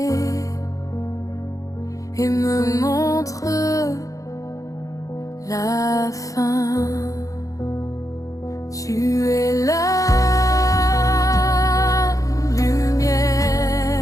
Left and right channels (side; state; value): right; late; 0.16 ms